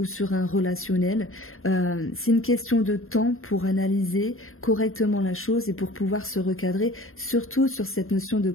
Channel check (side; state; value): right; late; 0.61 ms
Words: sur un relationnel, c'est une question de temps pour analyser correctement la chose et pour pouvoir se recadrer, surtout sur cette notion de